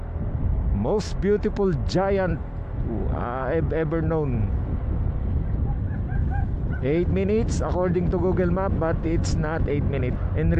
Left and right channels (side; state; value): both; identical; correlation 1.00